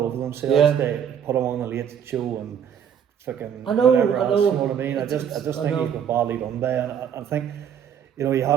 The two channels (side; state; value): left; quieter; 8.5 dB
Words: over themselves. They put him on the Late Show and fucking whatever else. You know what I mean? I just think he's been badly done by, and I think you know he